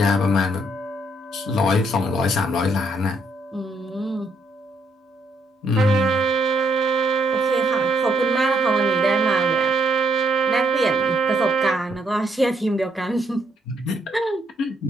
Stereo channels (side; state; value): both; normal; correlation 0.73